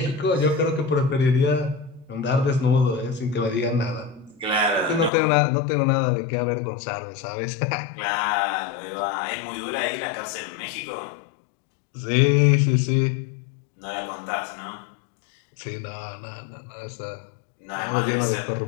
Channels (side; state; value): right; drops out; at 5.1 s